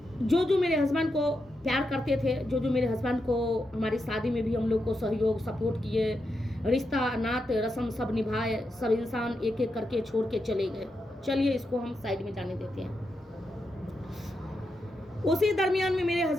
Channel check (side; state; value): both; normal; correlation 0.85